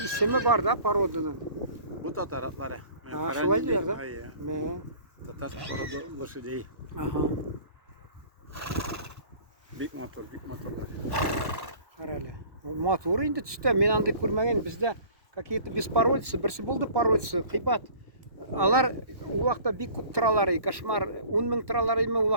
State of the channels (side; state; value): left; late; 1.1 ms